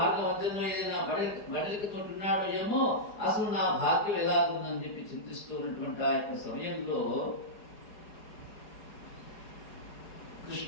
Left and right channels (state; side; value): late; right; 4.8 ms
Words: మధ్యలో ఏదైనా బడలికి తోటున్నాడో ఏమో, అసలు నా భాగ్యం ఎలాగుందని చెప్పి చింతిస్తూ ఉన్నటువంటి ఆ యొక్క సమయంలో